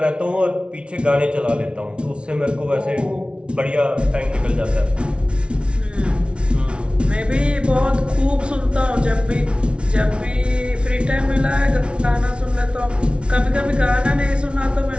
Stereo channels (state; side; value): late; left; 0.058 ms